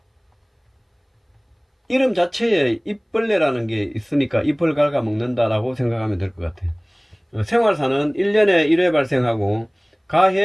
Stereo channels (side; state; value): both; identical; correlation 1.00